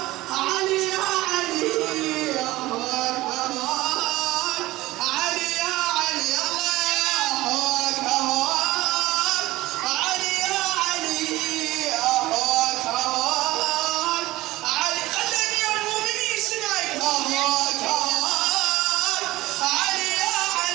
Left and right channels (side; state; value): left; quieter; 18.1 dB